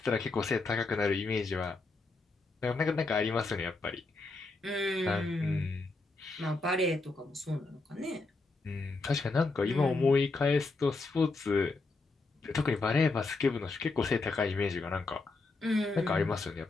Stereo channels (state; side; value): quieter; right; 3.5 dB